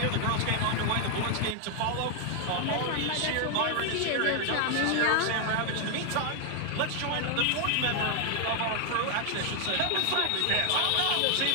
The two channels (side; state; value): both; different; correlation 0.00